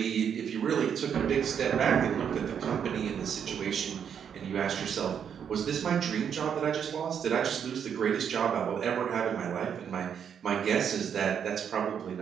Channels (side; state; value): left; quieter; 7.9 dB